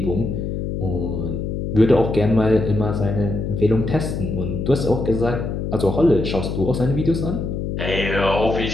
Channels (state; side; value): noise; left; hum, 3 dB below the sound